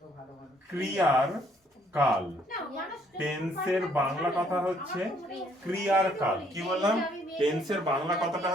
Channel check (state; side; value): normal; both; correlation 0.66